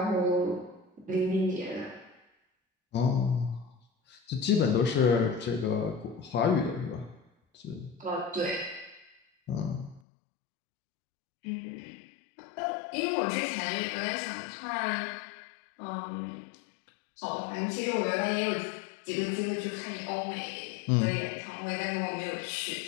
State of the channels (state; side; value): drops out; right; at 10.0 s